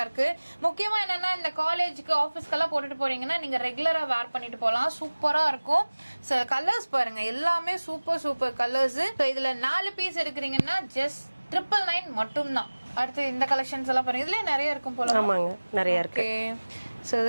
இருக்கு. முக்கியமா என்னன்னா இந்த காலேஜுக்கு ஆபீஸ்க்கு எல்லாம் போட்டுட்டு போறீங்கன்னா நீங்க ரெகுலரா வேர் பண்ணிட்டு போலாம். சூப்பரா இருக்கும். சோ கலர்ஸ் பாருங்க எல்லாமே சூப்பர் கலர்ஸ். சோ இதுல 4 பீஸ் எடுக்கிறீங்கன்னா ஜஸ்ட் 999 மட்டும் தான். அடுத்து இந்த கலெக்ஷன்ஸ் எல்லாம் பாருங்க. இதுல நிறைய இருக்கும் போல. ஆமாங்க, நிறைய இருக்கு. சோ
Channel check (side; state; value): both; inverted; correlation -1.00